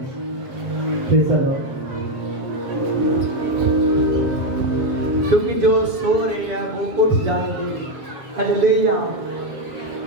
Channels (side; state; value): left; late; 7.6 ms